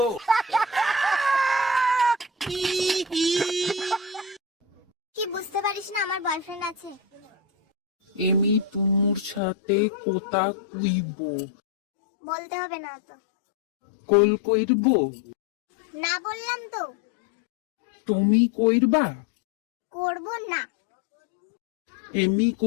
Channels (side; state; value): right; drops out; at 9.4 s